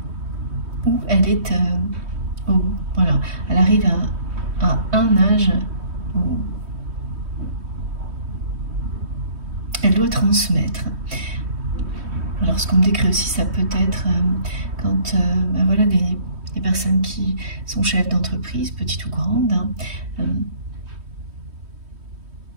Où elle est, voilà, elle arrive à un âge où elle doit transmettre. Alors ce qu'on me décrit aussi, ça peut être quand voilà, des personnes qui sont chefs d'entreprise, petites ou grandes,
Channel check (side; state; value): left; late; 3.2 ms